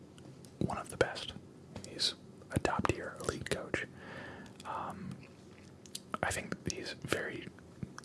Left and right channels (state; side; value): identical; both; correlation 1.00